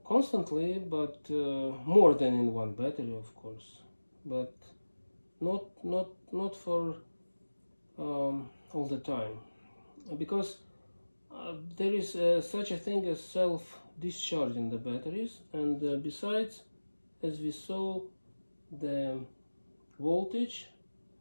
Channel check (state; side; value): inverted; both; correlation -1.00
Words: constantly, but more than in one battery, of course, but not for all the time, because there is such a thing as self-discharge in the batteries, and besides, as we saw, the voltage